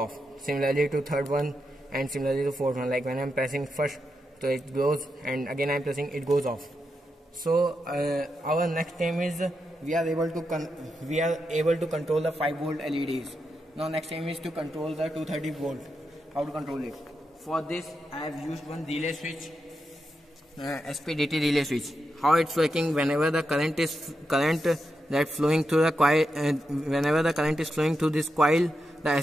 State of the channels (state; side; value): normal; both; correlation 0.86